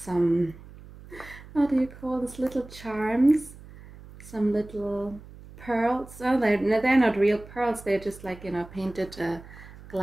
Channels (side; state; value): right; noise; hum, 18 dB below the sound